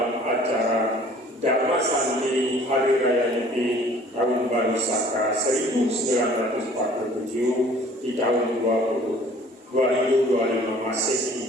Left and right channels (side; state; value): both; normal; correlation 0.52